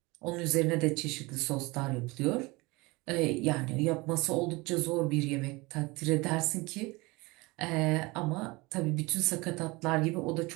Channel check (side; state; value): left; quieter; 23.9 dB